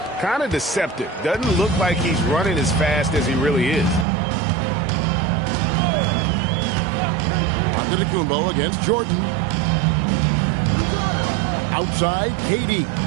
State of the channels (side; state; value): left; drops out; at 4.0 s